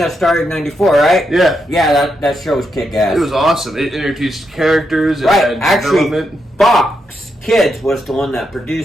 started in '94, right? Yeah. Yeah, that show was kick-ass. It was awesome. It introduced characters. It Right, had development. Fox Kids was the one that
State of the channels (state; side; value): normal; both; correlation 0.83